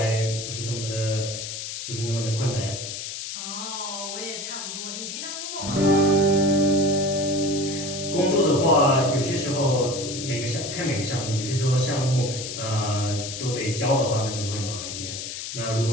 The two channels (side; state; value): left; noise; hiss, 7 dB below the sound